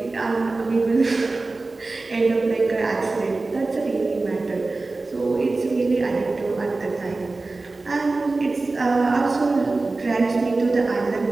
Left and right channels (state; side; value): quieter; left; 3.4 dB